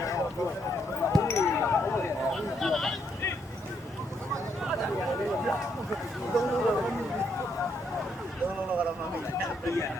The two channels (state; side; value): normal; both; correlation 0.74